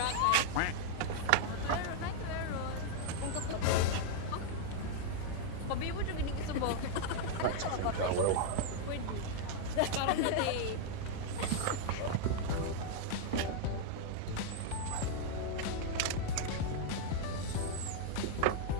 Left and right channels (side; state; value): both; different; correlation 0.00